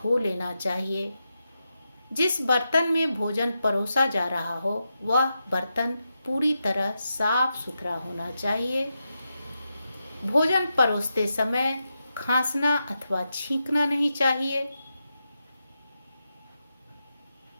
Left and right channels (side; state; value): both; inverted; correlation -0.87